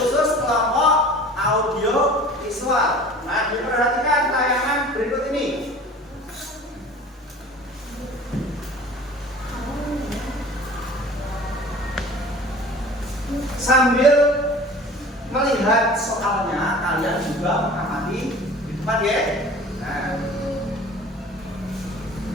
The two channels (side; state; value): both; normal; correlation 0.43